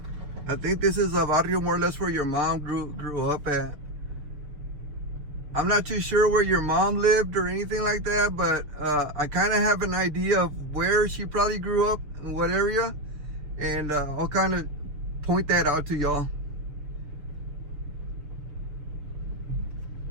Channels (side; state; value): left; late; 6.8 ms